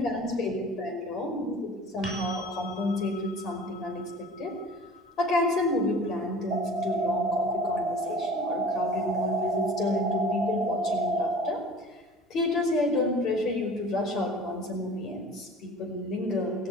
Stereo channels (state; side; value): normal; both; correlation 0.43